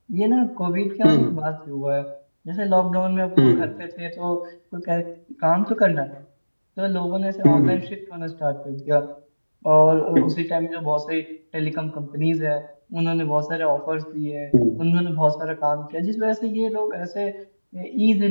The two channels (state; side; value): inverted; both; correlation -1.00